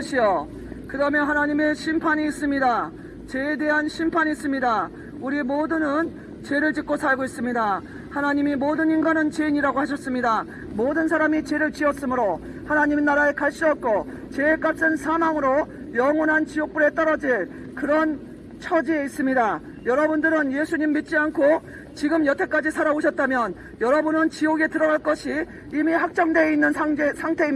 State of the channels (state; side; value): identical; both; correlation 1.00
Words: 그 다음에 하나님의 심판이 있습니다. 죄에 대한 심판이 있습니다. 우리 모두는 죄를 짓고 살고 있습니다. 하나님이 모든 인간은 죄인이라고 하셨습니다. 모든 사람이 죄를 지었으므로 하나님 나라에 갈 수 없고 죄의 값은 사망으로 영원한 지옥불에 떨어질 그런 처지에 있습니다. 여러분들은 예수님 믿지 않고 지금 여태까지 살아오셨다면 여러분은 지옥에 들어갈 것이 이미 확정되어 있는